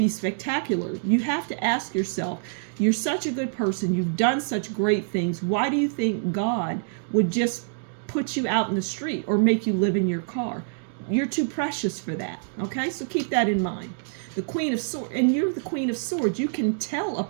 spectacular. You have to ask yourself, you're such a good person. You've done such great things. Why do you think God would just put you out in the street or make you live in your car? You're too precious for that. Okay, so keep that in mind. The Queen of Swords, and you're the Queen of Swords. You can tell a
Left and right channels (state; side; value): silent; left; digital silence